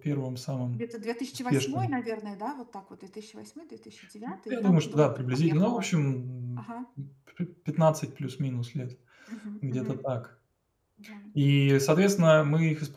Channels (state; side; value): identical; both; correlation 1.00